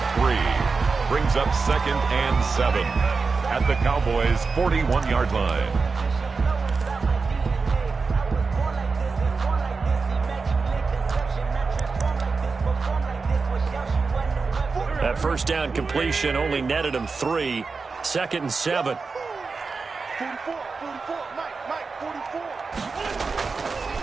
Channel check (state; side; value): quieter; left; 4.5 dB